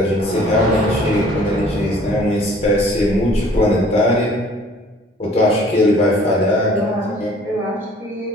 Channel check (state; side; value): normal; both; correlation 0.54